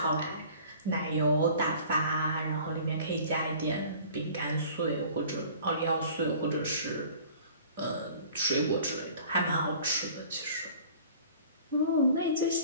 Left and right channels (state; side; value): inverted; both; correlation -0.48